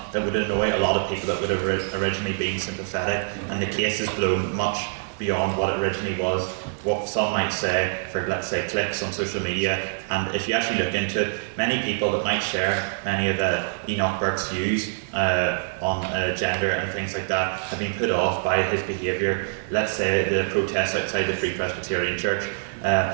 that would annoy a lot of people that would have originally been sympathetic, and the case has blown much beyond what it originally was, what some might say for, let's say, clicks on social media. And if you actually look into it, many people that might share many of Enoch Burke's views on gender and things like that have been put off by his behaviour. Let's say the protests outside the Free Presbyterian Church,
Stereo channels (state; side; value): silent; left; 62 dB below the other